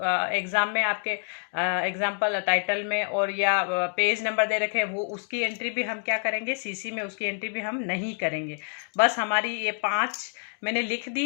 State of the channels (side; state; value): right; silent; digital silence